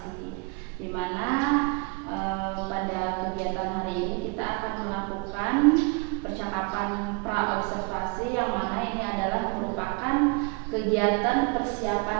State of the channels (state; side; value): quieter; left; 31.2 dB